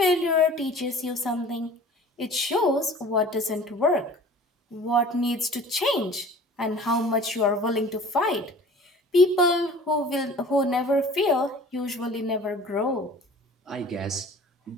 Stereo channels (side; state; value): both; normal; correlation 0.45